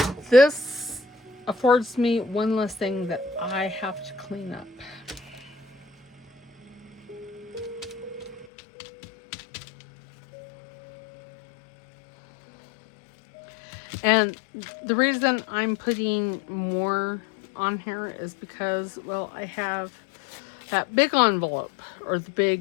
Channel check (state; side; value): drops out; right; at 8.5 s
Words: this affords me one less thing that I have to clean up. And the reason I'm putting more on here is because, well, I have that big envelope, or the